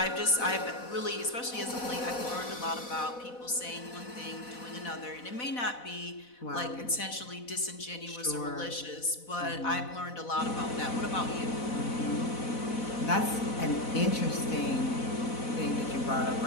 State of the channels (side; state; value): right; late; 4.1 ms